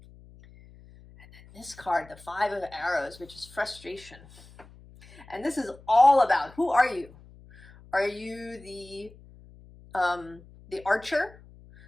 then this card, the 5 of Arrows, which is frustration. And this is all about, who are you? Are you the archer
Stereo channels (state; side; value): noise; left; hum, 22 dB below the sound